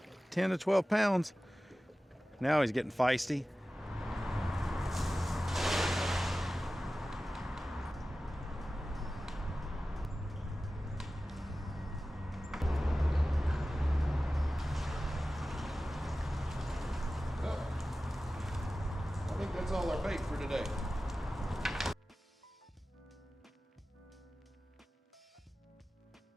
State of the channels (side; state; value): both; normal; correlation 0.95